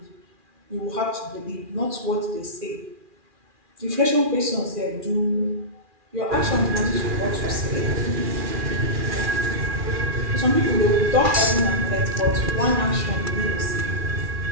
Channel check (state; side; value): late; left; 2.4 ms